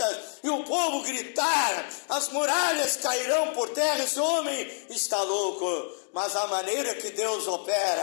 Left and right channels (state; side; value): silent; right; digital silence